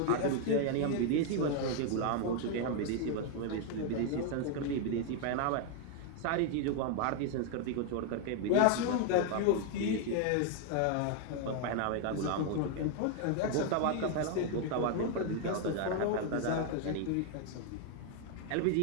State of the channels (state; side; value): different; both; correlation 0.00